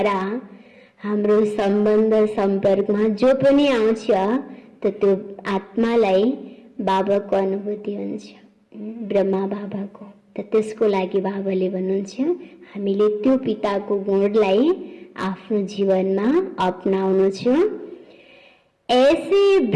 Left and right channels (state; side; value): identical; both; correlation 1.00